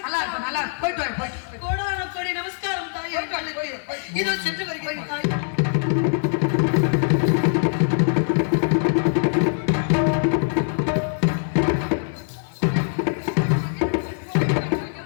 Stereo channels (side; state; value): right; silent; digital silence